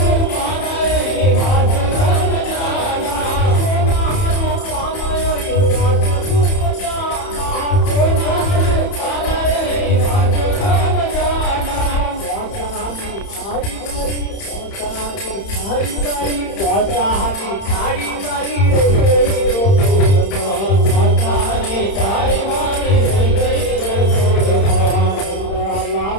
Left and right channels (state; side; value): late; right; 31 ms